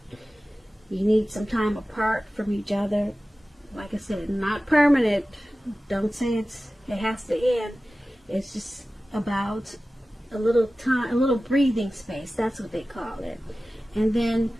need some time apart from each other. Like I said, not permanent. Don't say it has to end. It's just about a little time, a little breathing space. That's what they call it. And then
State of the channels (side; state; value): both; normal; correlation 0.96